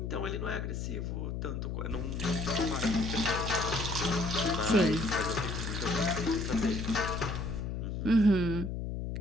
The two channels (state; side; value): noise; left; hum, 3 dB below the sound